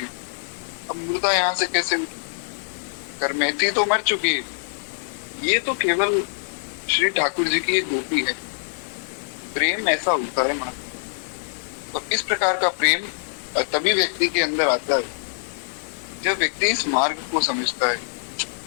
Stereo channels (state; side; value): silent; right; digital silence